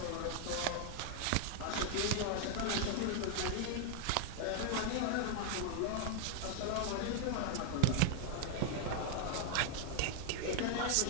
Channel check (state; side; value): different; both; correlation 0.00